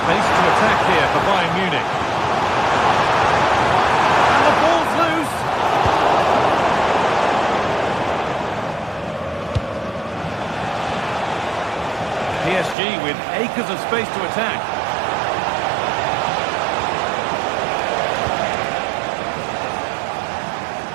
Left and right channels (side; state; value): left; drops out; at 12.8 s